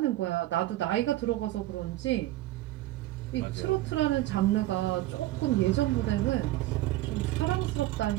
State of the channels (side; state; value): left; quieter; 16.0 dB